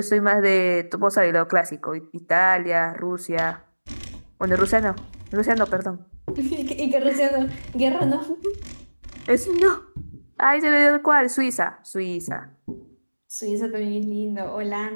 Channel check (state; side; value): inverted; both; correlation -1.00